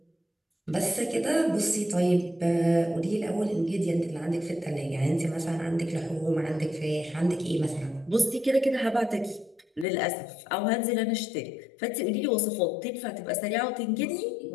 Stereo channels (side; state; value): right; drops out; at 9.9 s